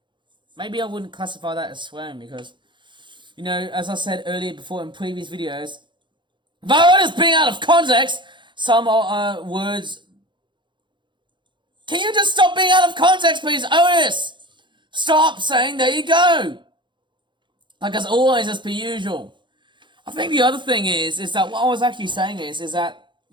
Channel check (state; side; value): late; left; 0.23 ms